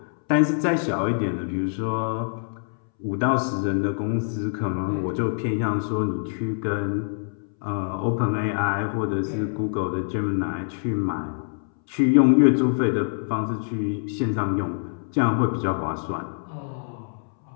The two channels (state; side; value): silent; right; 62 dB below the other